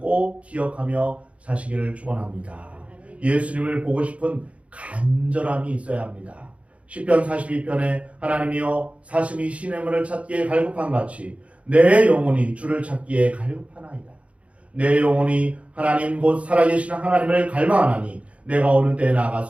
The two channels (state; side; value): late; left; 0.063 ms